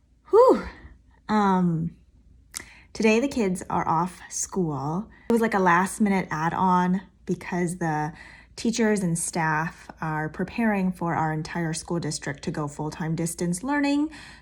Whew. Today the kids are off school. It was like a last minute add-on because the teachers and staff are preparing for our entire school district to go full-time distance learning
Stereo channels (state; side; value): identical; both; correlation 1.00